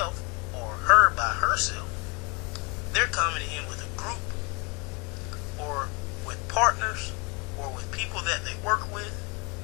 or her by herself, they're coming in with a group or with partners or with people that they work with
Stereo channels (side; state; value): right; quieter; 30.0 dB